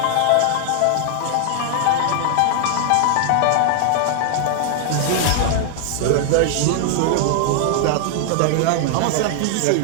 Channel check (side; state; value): both; different; correlation 0.00